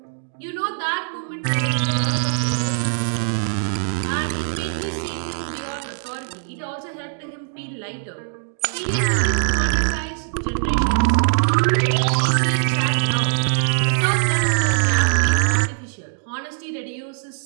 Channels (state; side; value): silent; left; digital silence